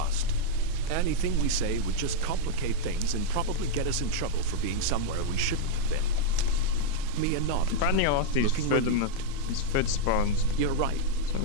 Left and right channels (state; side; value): different; both; correlation -0.01